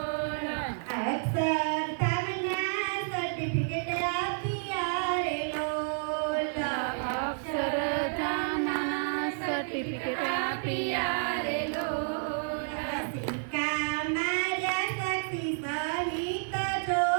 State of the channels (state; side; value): silent; left; digital silence